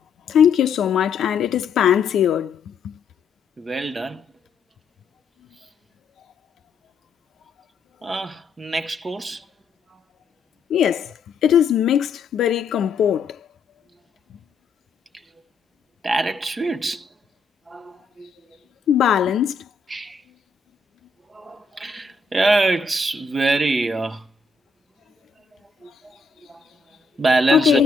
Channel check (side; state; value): right; quieter; 4.1 dB